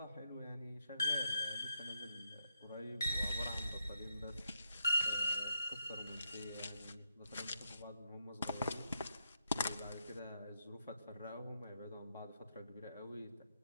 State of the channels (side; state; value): both; inverted; correlation -0.83